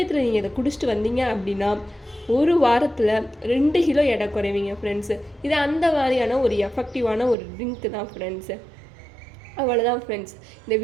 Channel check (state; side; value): drops out; left; at 7.4 s